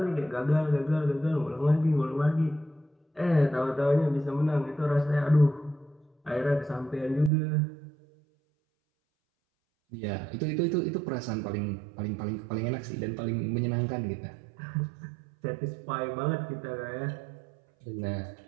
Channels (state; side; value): drops out; left; at 7.3 s